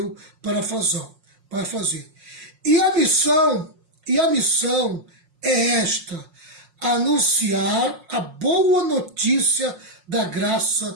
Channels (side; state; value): left; late; 5.5 ms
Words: para fazer. E a missão é esta: anunciar a boa notícia da